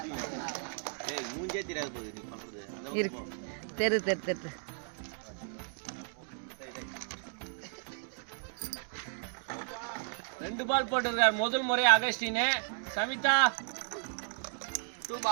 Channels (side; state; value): left; silent; 55 dB below the other